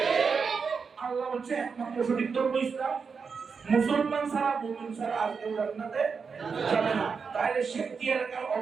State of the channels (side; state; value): left; quieter; 5.5 dB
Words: আল্লাহ বলছে একমাত্র সঠিক ধর্ম ইসলাম, মুসলমান ছাড়া, মুমিন ছাড়া আর কেউ জান্নাতে যাবে না। তাহলে শেখি এলাকার